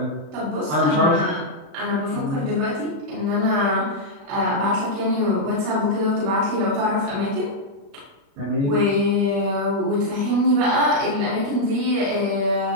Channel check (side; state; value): left; late; 36 ms